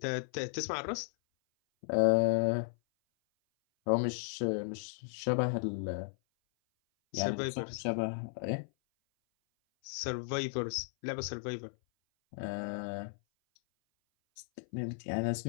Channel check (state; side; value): silent; right; 55 dB below the other